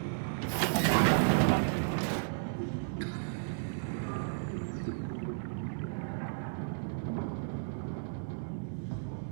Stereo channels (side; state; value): left; silent; digital silence